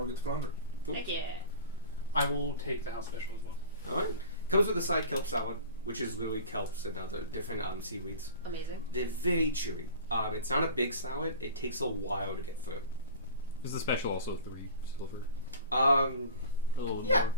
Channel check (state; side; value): inverted; both; correlation -0.39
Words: gets flounder. Cool. Heck yeah. I will take the house special as well. All right. Comes with a side kelp salad, which is literally kelps and other different seaweeds. Amazing. They're very chewy. It's not a big salad. It takes a while to get through. Is the special also 3 silver? A little yeah.